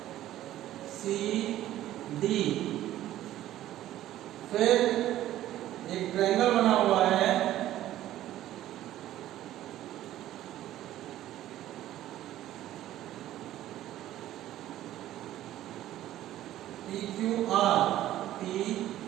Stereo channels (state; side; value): quieter; left; 13.5 dB